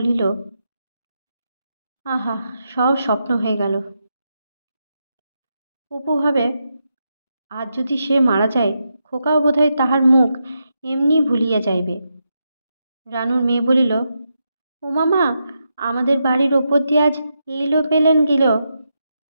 আহা, সব স্বপ্ন হয়ে গেল। অপু ভাবে, আজ যদি সে মারা যায়, খোকাও বোধহয় তাহার মুখ এমনি ভুলিয়া যাইবে। রানুর মেয়ে বলিল, ও মামা, আমাদের বাড়ির ওপর দিয়ে আজ এইলো পেলেন গেল?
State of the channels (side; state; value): both; inverted; correlation -0.84